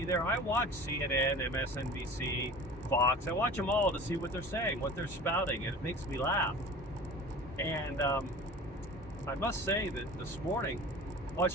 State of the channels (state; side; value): normal; both; correlation 0.40